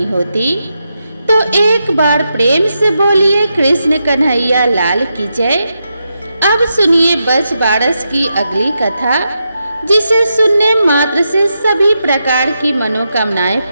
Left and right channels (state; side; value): inverted; both; correlation -0.86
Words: होती। तो एक बार प्रेम से बोलिए कृष्ण कन्हैया लाल की जय। अब सुनिए बच बारस की अगली कथा, जिसे सुनने मात्र से सभी प्रकार की मनोकामनाएं